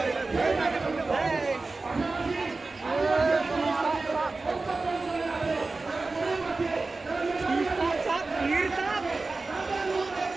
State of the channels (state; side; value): quieter; left; 3.6 dB